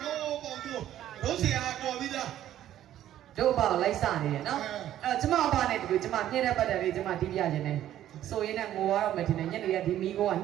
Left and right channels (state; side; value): quieter; left; 12.1 dB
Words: းပေါ်ကျိုးရိုးစရာတော်ပြီးသား တို့ဘာလိုက်စနေတယ်နော်အဲ့တော့ကျမအဖနဲ့တူကျမပြည့်တဲ့ပတ်တယ်လေးကျမတီးပြခြင်းနဲ့ဆိုရင်လည်းငိုရတော့မယ်ထင်တယ်ညနေရဒီမီးကိုက